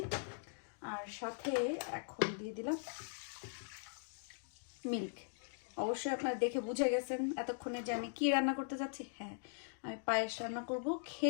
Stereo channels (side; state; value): right; silent; digital silence